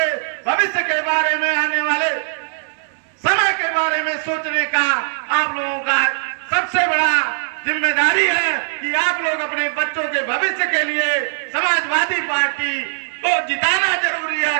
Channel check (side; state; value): left; silent; digital silence